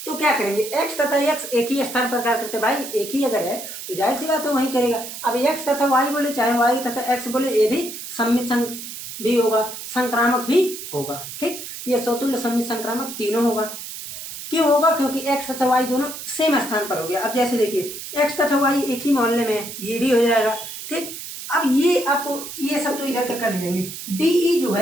तो क्या करेंगे, एक्स तथा एक्स एक ही स्थान पर कार्य करते, भाई एक ही अगर है तो जाहिर सी बात है वही करेगा। अब एक्स तथा वाई बोले, चाहे वाई तथा एक्स बोले, ये भी सम्मित भी होगा, संक्रामक भी होगा। ठीक, ये स्वतुल्य सम्मित संक्रामक तीनों होगा। क्यों होगा, क्योंकि एक्स तथा वाई दोनों सेम स्थान पर हो गया। अब जैसे देखिए एक्स तथा वाई एक ही मोहल्ले में है, ये भी हो जाएगा। ठीक, अब ये आपको ये सब तो इधर कर लीजिएंगे, डी जो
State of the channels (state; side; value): noise; right; hiss, 10 dB below the sound